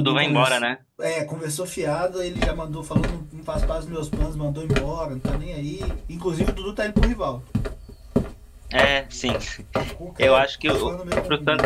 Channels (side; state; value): both; identical; correlation 1.00